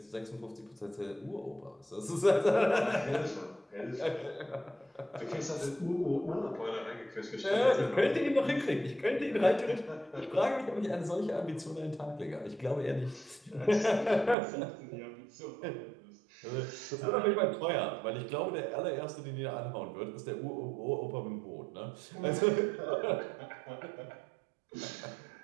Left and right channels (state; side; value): drops out; left; at 14.4 s